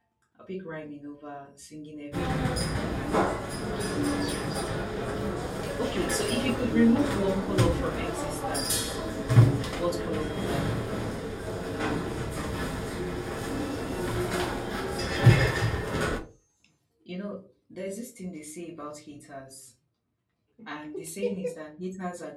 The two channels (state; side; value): identical; both; correlation 1.00